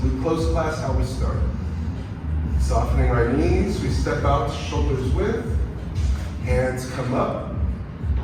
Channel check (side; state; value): both; identical; correlation 1.00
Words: close class how we start. Softening our knees, we step out shoulders width, hands come up,